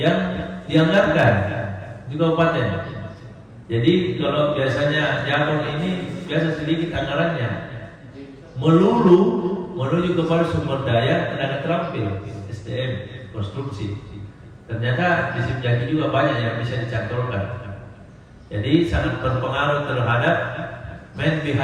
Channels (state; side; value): identical; both; correlation 1.00